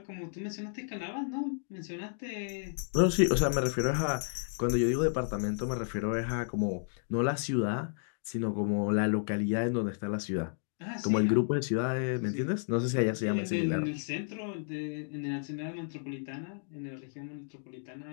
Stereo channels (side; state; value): right; silent; digital silence